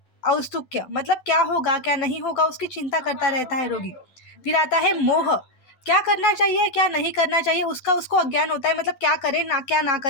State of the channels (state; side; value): late; right; 12 ms